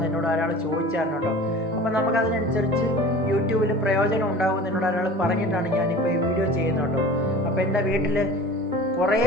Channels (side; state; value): both; normal; correlation 0.39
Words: എന്നോട് ഒരാൾ ചോദിച്ചായിരുന്നു കേട്ടോ. അപ്പം നമുക്കതിനനുസരിച്ച് യൂട്യൂബിൽ പ്രയോജനം ഉണ്ടാകുമെന്ന് എന്നോട് ഒരാൾ പറഞ്ഞിട്ടാണ് ഞാനിപ്പോൾ ഈ വീഡിയോ ചെയ്യുന്നത് കേട്ടോ. അപ്പോൾ എൻ്റെ വീട്ടിൽ കുറേ